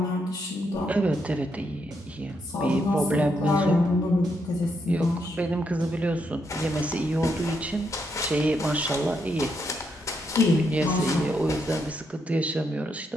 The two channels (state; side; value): normal; both; correlation 0.79